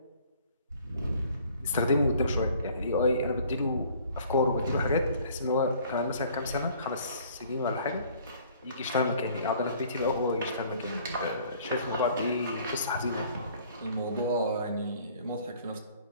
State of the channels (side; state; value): both; inverted; correlation -0.56